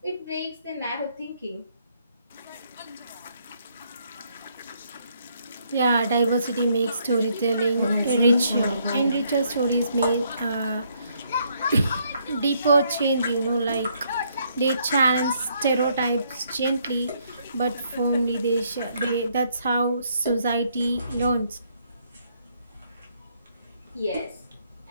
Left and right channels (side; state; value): both; inverted; correlation -0.71